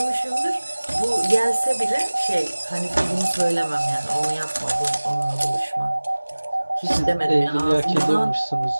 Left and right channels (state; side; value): inverted; both; correlation -1.00